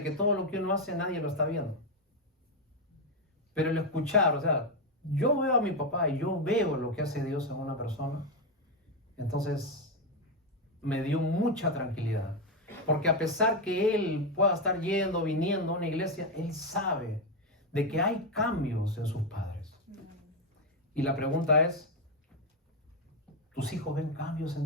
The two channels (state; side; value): normal; both; correlation 0.06